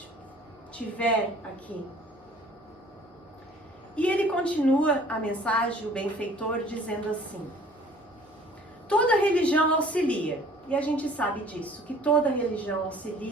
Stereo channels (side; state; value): both; normal; correlation 0.52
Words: tiver aqui? E ele continua a mensagem, o benfeitor, dizendo assim: toda religião auxilia, e a gente sabe disso, que toda religião